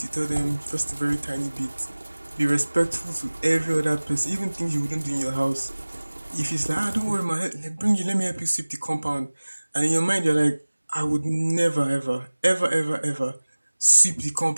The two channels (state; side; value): inverted; both; correlation -1.00